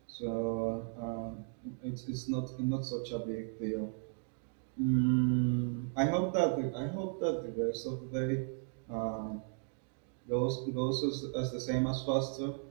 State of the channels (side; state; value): left; silent; 54 dB below the other